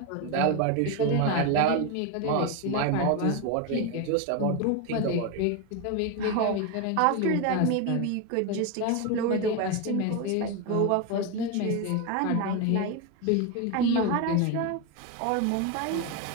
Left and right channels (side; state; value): both; different; correlation 0.02